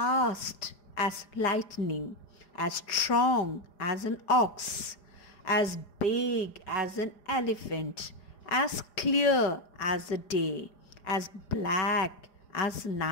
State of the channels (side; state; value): right; late; 4.9 ms